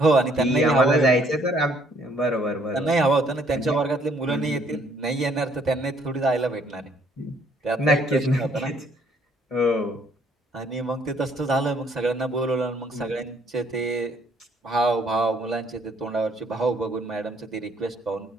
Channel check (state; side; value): normal; both; correlation 0.65